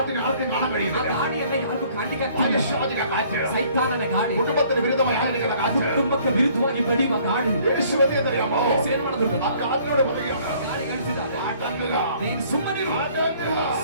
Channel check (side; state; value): both; inverted; correlation -0.58